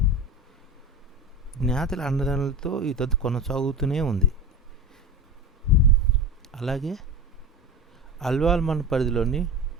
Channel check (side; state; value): both; normal; correlation 0.28